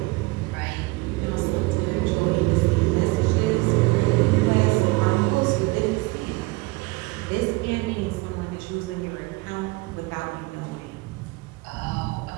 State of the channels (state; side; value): quieter; left; 23.6 dB